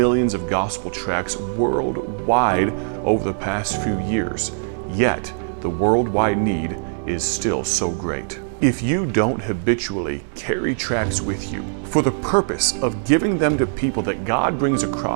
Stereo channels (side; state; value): left; silent; 63 dB below the other